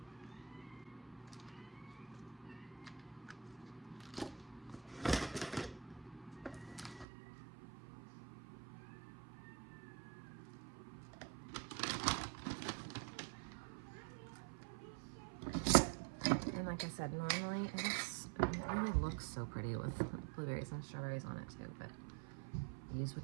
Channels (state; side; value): drops out; left; at 7.1 s